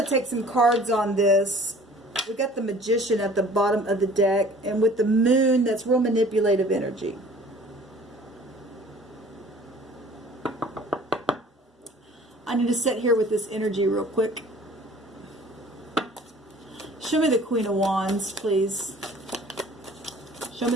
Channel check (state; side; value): normal; both; correlation 0.50